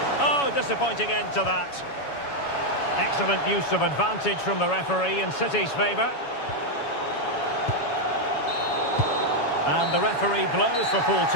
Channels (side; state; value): right; late; 7.1 ms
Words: Oh, disappointing end to that. Excellent use of advantage from the referee in City's favour. And the referee blows for full